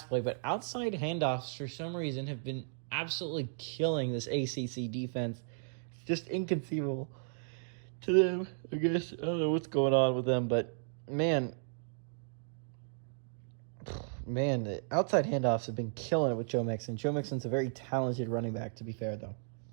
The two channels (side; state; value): left; silent; digital silence